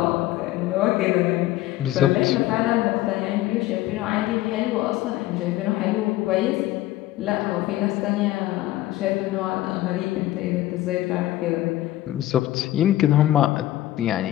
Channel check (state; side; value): quieter; right; 15.4 dB